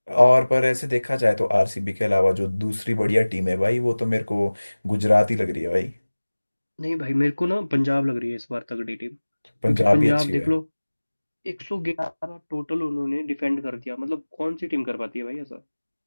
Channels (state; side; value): inverted; both; correlation -1.00